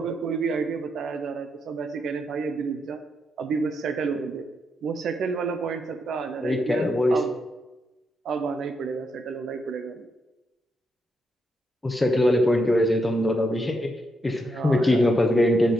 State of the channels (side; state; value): both; normal; correlation 0.81